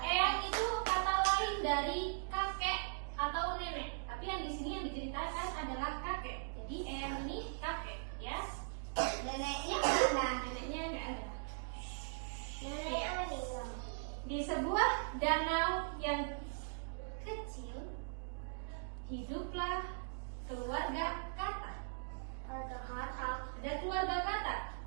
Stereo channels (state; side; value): silent; left; digital silence